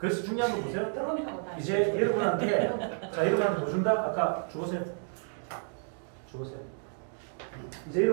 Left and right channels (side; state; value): left; silent; 57 dB below the other